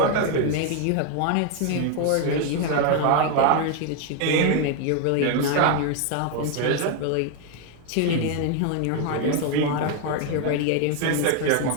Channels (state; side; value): different; both; correlation 0.01